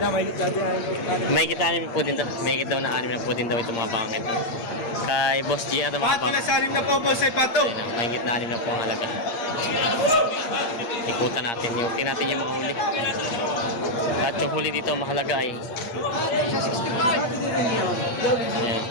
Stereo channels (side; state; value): right; late; 8.6 ms